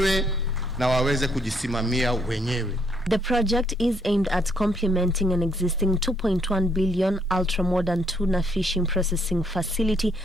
na waweze kujisimamia wenyewe. The project is aimed at complementing an existing 2.1 billion ultra-modern tuna fishing processing facility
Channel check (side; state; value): both; normal; correlation 0.70